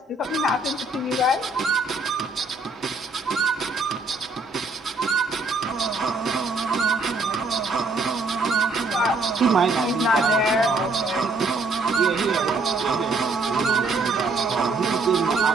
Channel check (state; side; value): quieter; left; 3.3 dB